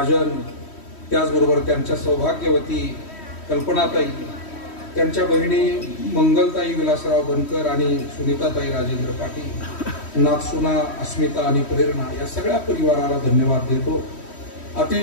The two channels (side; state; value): right; late; 3.1 ms